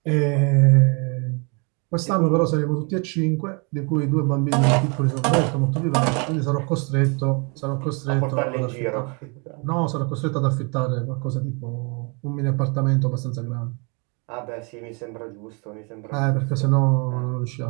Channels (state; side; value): quieter; left; 33.2 dB